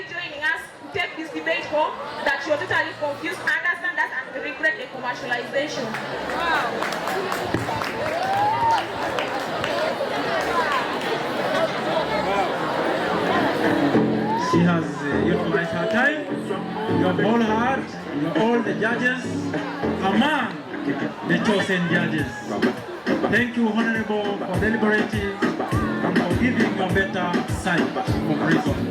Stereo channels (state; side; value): identical; both; correlation 1.00